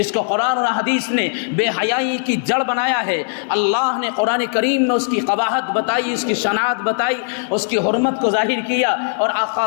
کو قرآن اور حدیث نے بے حیائی کی جڑ بنایا ہے۔ اللہ نے قرآن کریم میں اس کی قباحت بتائی، اس کی شناعت بتائی، اس کی حرمت کو ظاہر کیا، اور آقا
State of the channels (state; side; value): silent; right; 62 dB below the other